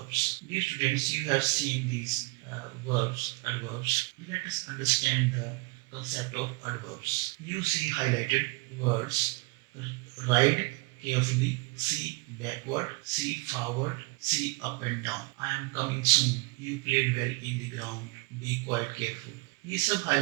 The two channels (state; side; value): quieter; left; 28.0 dB